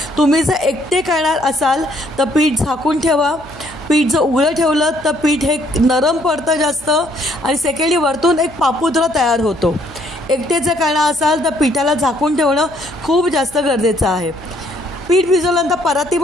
तुम्ही जर एकटे करणार असाल तर पीठ झाकून ठेवा. पीठ जर उघडं ठेवलं तर पीठ हे नरम पडतं जास्त आणि सेकंडली वरतून एक पापुद्रा तयार होतो. एकटे जर करणार असाल तर पिठाला झाकून ठेवणं खूप जास्त गरजेचं आहे. पीठ भिजवल्यानंतर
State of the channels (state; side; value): noise; right; hum, 20 dB below the sound